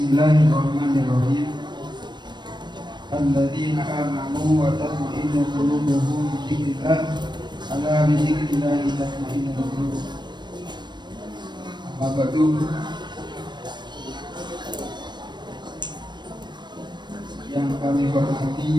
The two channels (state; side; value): late; left; 0.22 ms